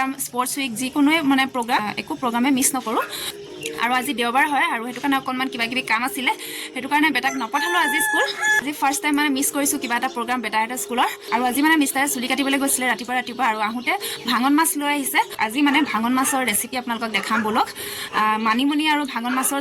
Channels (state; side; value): identical; both; correlation 1.00